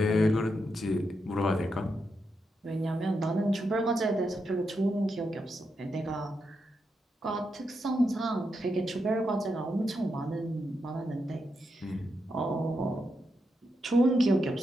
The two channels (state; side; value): normal; both; correlation 0.84